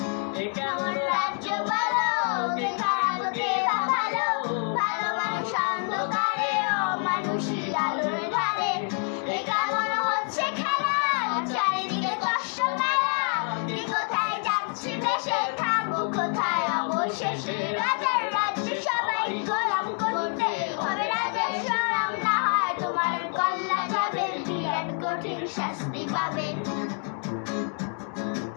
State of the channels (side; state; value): right; quieter; 38.0 dB